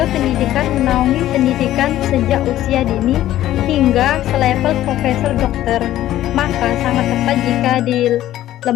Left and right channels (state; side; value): quieter; right; 13.5 dB